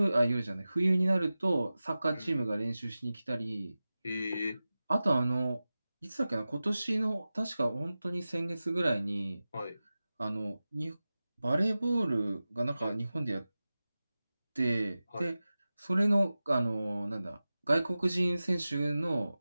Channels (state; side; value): inverted; both; correlation -0.96